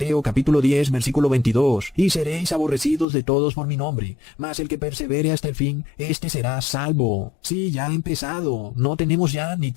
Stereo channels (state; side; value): drops out; right; at 3.1 s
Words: capítulo 10, versículo 22. Y seréis aborrecidos de todos por mi nombre. Mas el que persevere hasta el fin, éste será salvo. Sí, ya ha empezado. No tenemos ya ni